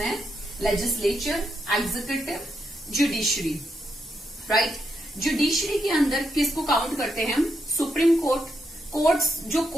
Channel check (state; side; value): normal; both; correlation 0.81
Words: legislature, executive, judiciary, right. Judiciary के अंदर किसको काउंट करते हैं हम? सुप्रीम कोर्ट, कोर्ट्स, जो